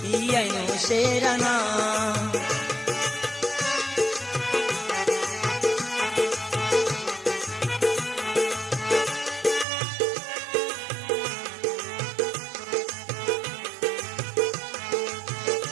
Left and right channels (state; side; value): drops out; left; at 9.7 s